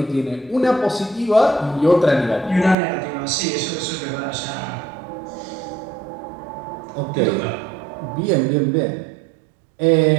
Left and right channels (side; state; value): left; drops out; at 2.8 s